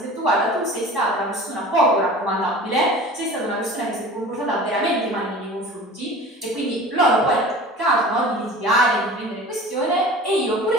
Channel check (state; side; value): normal; both; correlation 0.40